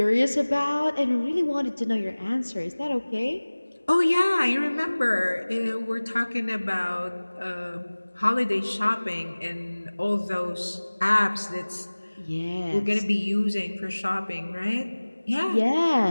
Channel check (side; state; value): both; inverted; correlation -1.00